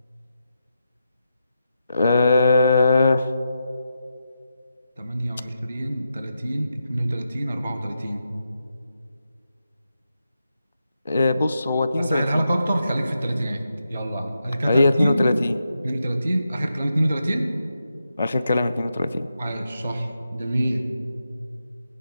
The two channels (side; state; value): both; inverted; correlation -0.87